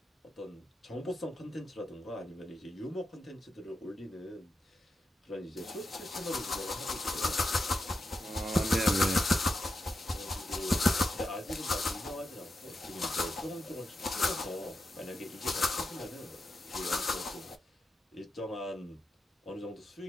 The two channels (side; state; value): both; normal; correlation 0.87